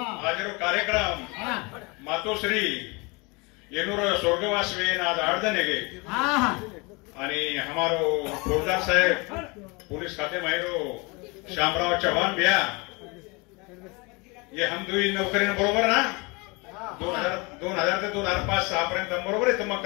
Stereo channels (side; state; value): right; quieter; 27.7 dB